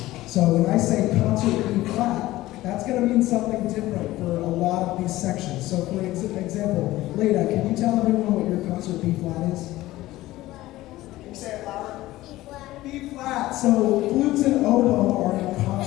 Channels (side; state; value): right; quieter; 16.8 dB